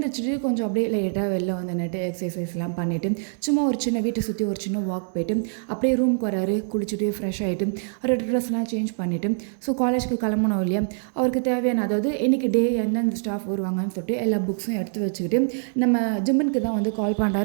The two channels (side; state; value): left; silent; digital silence